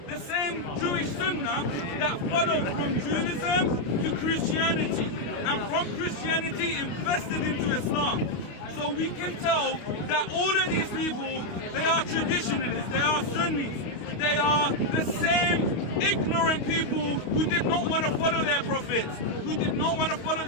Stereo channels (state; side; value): late; right; 28 ms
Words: the same Jewish sunnah that followed from Judaism to Christianity, and from Christianity infested into Islam. So we can tell that all of these people, they are traditionalists, they are Sunnis. They are the same ignorant people who did not want to follow their prophets, who did not want to follow